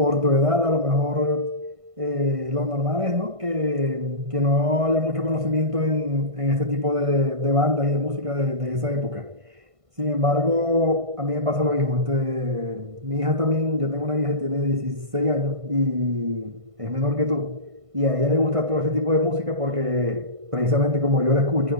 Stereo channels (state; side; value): late; left; 1.5 ms